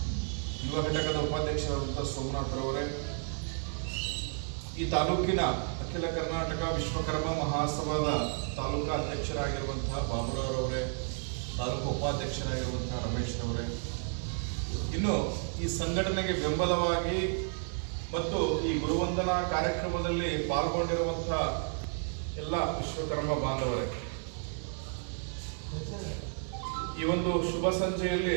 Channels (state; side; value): silent; left; 56 dB below the other